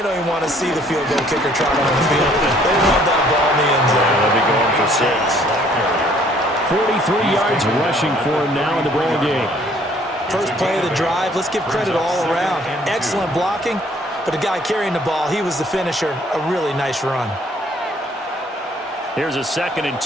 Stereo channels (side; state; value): both; normal; correlation 0.60